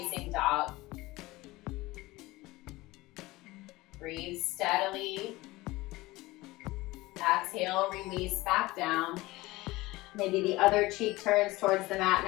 dog. Breathe steadily. Exhale, release back down. Maybe the other cheek turns towards the mat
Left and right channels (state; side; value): quieter; right; 19.9 dB